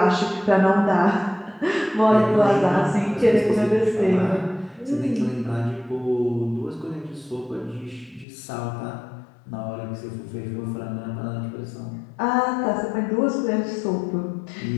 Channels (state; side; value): drops out; right; at 8.2 s